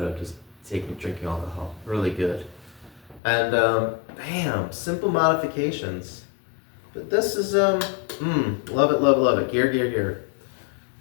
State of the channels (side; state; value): right; drops out; at 3.2 s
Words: of just drinking alcohol. Really good. And bam, simple modifications. But this is love it. Gear.